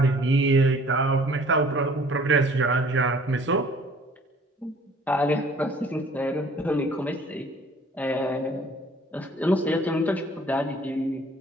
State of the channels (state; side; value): normal; both; correlation 0.54